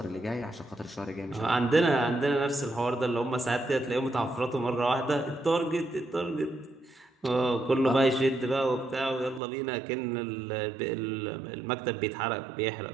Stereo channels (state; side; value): drops out; left; at 9.4 s